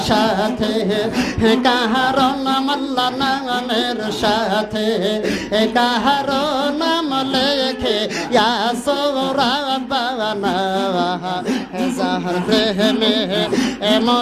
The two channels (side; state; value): both; identical; correlation 1.00